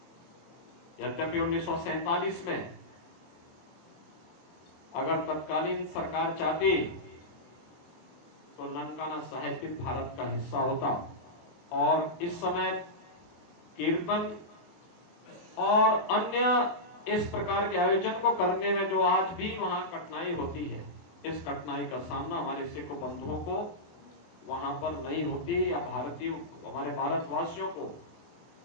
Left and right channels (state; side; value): late; right; 24 ms